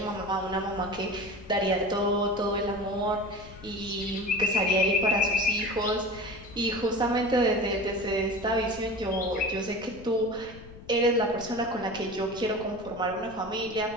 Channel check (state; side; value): noise; left; rumble, 18 dB below the sound